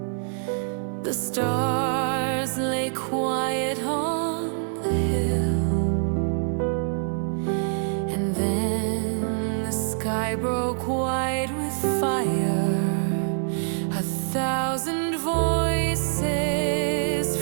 The stars lay quiet on the hill. And then the sky broke white with fire. 1,000 voices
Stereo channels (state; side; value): silent; left; 62 dB below the other